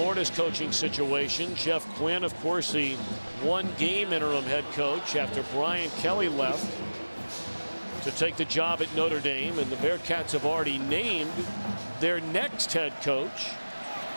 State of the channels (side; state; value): both; inverted; correlation -1.00